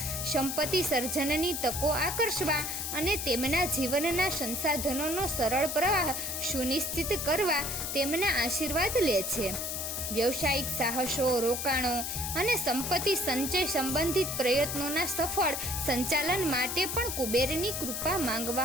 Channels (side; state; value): left; noise; hiss, 3 dB below the sound